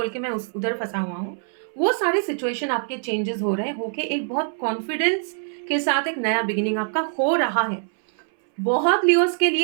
के मैं उधर फंसा हुआ हूँ। वो सारे सिचुएशन आपके चेंजेस हो रहे हैं, होके एक बहुत कॉन्फिडेंस के साथ एक नया बिगिनिंग आपका हो रहा है। बहुत लियोस के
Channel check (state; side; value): silent; left; 62 dB below the other